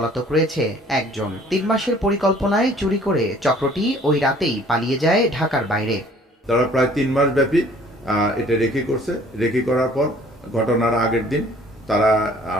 রয়েছে 1 জন। 3 মাসের পরিকল্পনায় চুরি করে চক্রটি ওই রাতেই পালিয়ে যায় ঢাকার বাইরে। তারা প্রায় 3 মাস ব্যাপী এটা রেকি করছে। রেকি করার পর ঘটনার আগের দিন তারা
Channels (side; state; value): both; normal; correlation 0.55